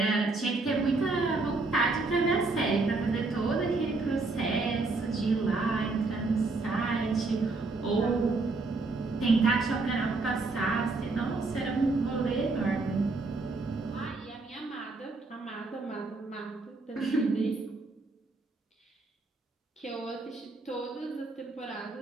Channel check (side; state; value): left; quieter; 3.6 dB